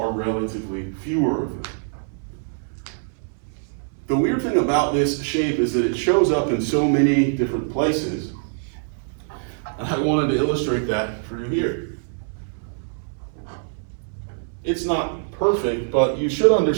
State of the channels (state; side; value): silent; left; 63 dB below the other